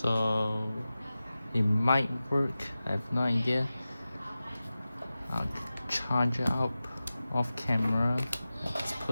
it might work. I have no idea. I'll charge it up off camera. Let's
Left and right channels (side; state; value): both; inverted; correlation -0.95